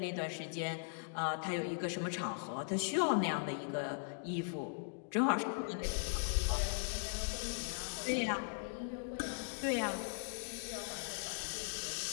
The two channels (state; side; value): silent; right; digital silence